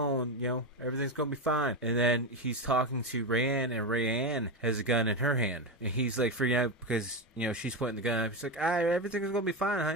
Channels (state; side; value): normal; both; correlation 0.13